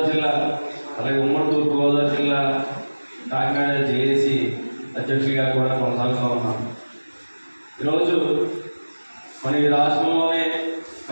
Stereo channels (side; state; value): both; inverted; correlation -1.00